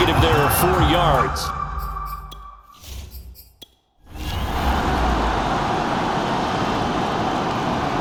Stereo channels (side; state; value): both; identical; correlation 1.00